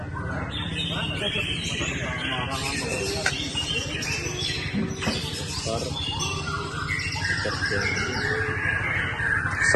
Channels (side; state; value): both; identical; correlation 1.00